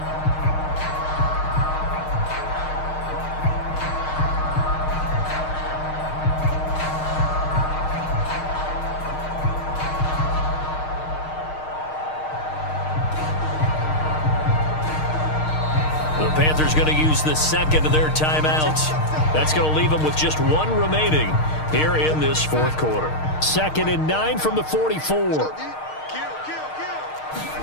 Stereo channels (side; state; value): right; late; 6.5 ms